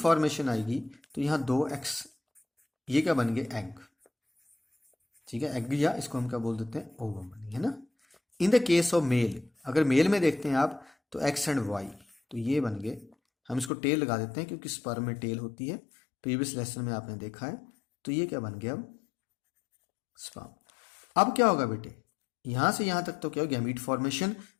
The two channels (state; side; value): drops out; right; at 13.7 s